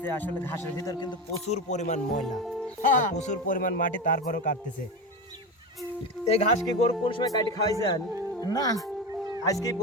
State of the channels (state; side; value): normal; both; correlation 0.21